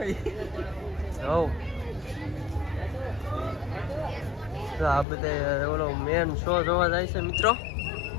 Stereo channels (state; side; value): drops out; right; at 5.1 s